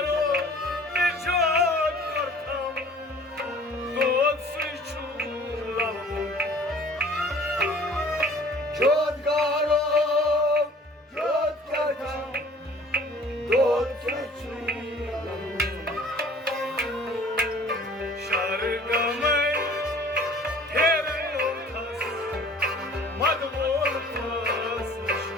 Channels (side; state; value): both; normal; correlation 0.50